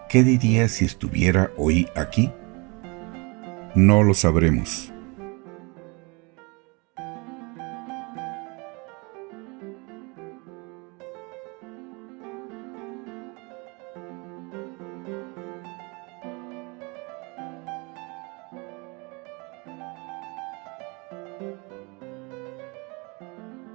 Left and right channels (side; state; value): left; quieter; 29.1 dB